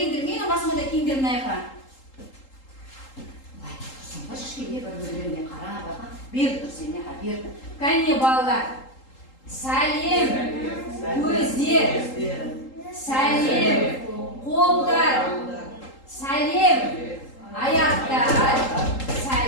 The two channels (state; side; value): late; right; 3.8 ms